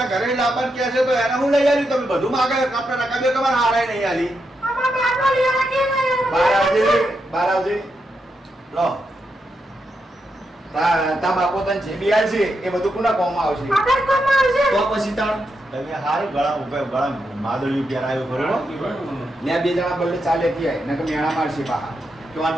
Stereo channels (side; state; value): both; normal; correlation 0.84